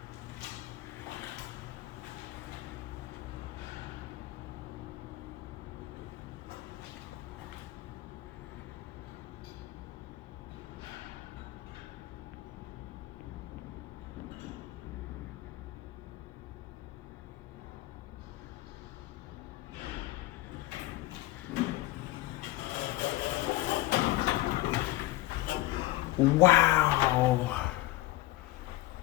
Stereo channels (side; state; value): right; quieter; 17.8 dB